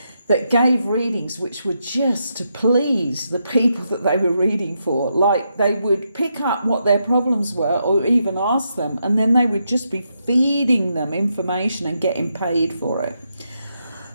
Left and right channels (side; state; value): both; inverted; correlation -0.81